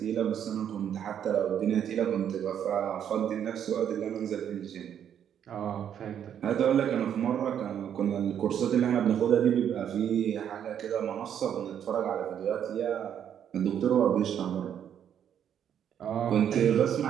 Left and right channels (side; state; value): left; quieter; 9.2 dB